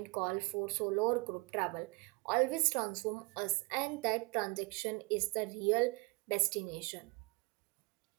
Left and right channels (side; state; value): left; quieter; 29.4 dB